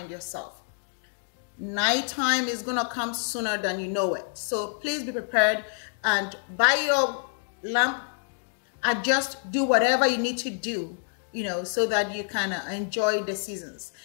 yourself. Nighttime is going to come sooner than you know it. So please be prepared and buy your lamp. Adjust, do whatever you need to do, so that you can enjoy the seasons.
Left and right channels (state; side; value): silent; right; digital silence